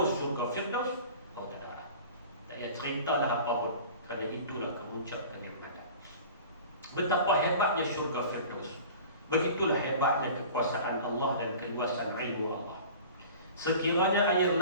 syurga Firdaus, kau tak ada. Tak payah ceritalah apa pun, kerana itulah kemuncak kenikmatan. Betapa hebatnya syurga Firdaus. Begitulah hebatnya kekuasaan Allah dan keluasan ilmu Allah. Sekiranya air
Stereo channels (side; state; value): both; inverted; correlation -0.41